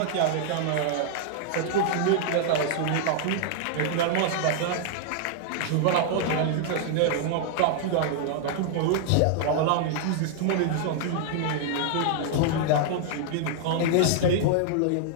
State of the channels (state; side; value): different; both; correlation -0.01